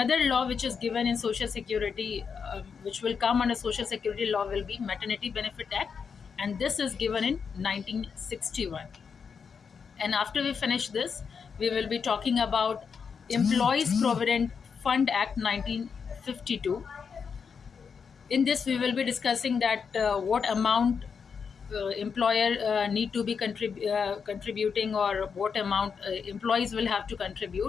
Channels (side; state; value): right; quieter; 6.1 dB